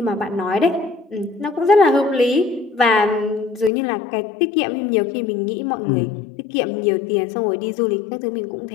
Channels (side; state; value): right; drops out; at 3.7 s